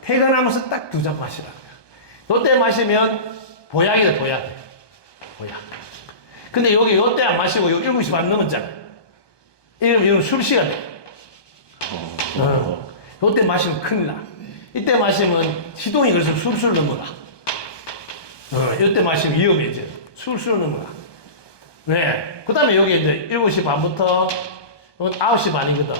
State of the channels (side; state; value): right; late; 1.2 ms